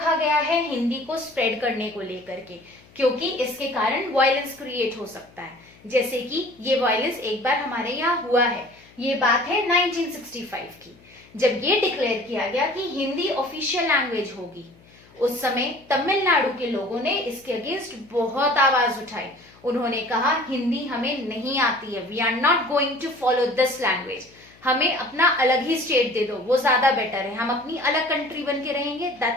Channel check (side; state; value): left; noise; hum, 27 dB below the sound